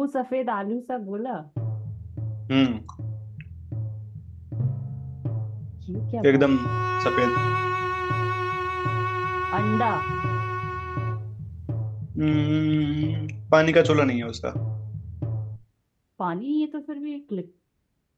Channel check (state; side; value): identical; both; correlation 1.00